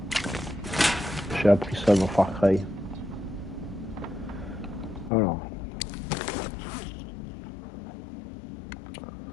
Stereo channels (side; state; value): right; drops out; at 5.1 s